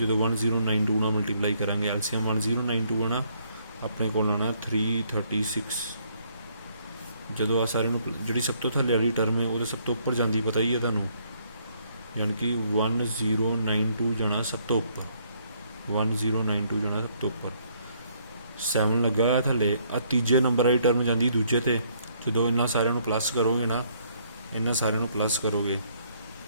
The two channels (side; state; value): both; inverted; correlation -0.68